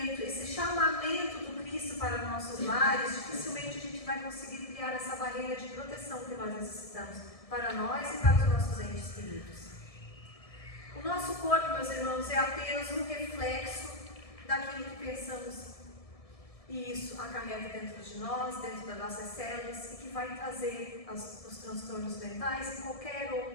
esse chamamento do Cristo para nossos lares, dificilmente a gente vai conseguir criar essa barreira de proteção que nós necessitamos para nós e para os nossos entes queridos. O nosso corpo, meus irmãos, é apenas um reflexo daquilo que pensamos. E isso acarreta dentro de nós, dentro das nossas células, e que vai trazer os transtornos mentais e qualquer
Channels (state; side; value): late; right; 1.7 ms